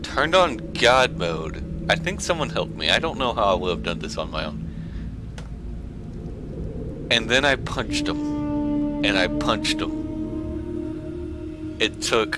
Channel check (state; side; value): identical; both; correlation 1.00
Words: turned on God mode. I think someone helped me. I don't know how I would have done this on my own. And then I punched him. And I punched him. It took